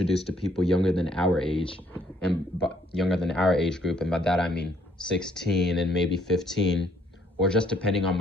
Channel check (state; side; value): normal; both; correlation 0.66